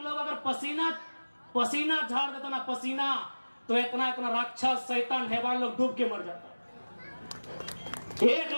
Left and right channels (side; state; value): both; inverted; correlation -1.00